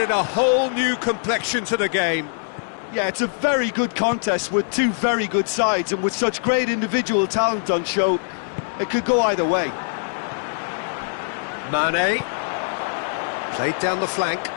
a whole new complexion to the game. Yeah, it's a very good contest with two very good sides, and with such great individual talent on show, it could go either way. Mane. Played down the flank.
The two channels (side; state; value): right; silent; digital silence